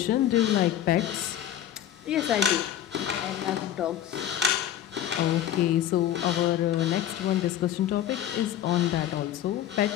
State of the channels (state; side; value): quieter; right; 11.2 dB